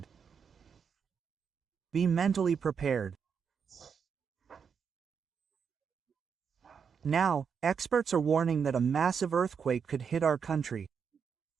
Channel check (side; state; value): left; quieter; 6.6 dB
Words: Be mentally prepared. Now, experts are warning that a massive earthquake could hit our country.